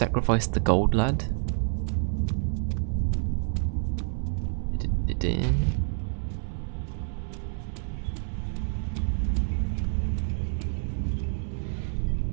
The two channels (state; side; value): silent; left; digital silence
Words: the gold lad?